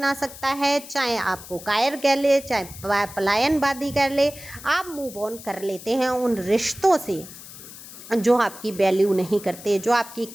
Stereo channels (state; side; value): noise; left; hiss, 15 dB below the sound